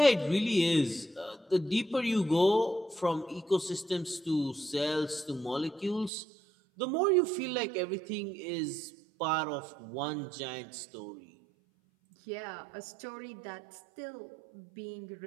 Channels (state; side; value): drops out; left; at 6.1 s